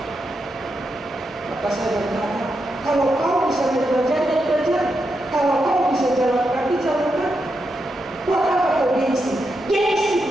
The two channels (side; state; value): both; normal; correlation 0.85